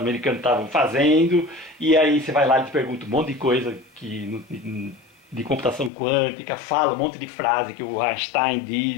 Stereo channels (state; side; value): drops out; right; at 5.9 s